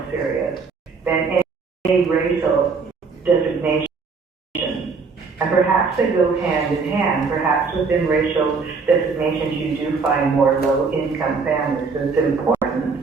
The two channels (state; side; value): quieter; left; 4.8 dB